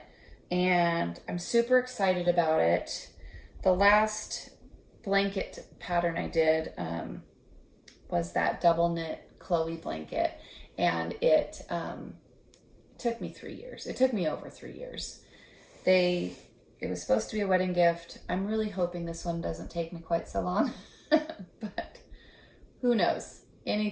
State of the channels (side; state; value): both; identical; correlation 1.00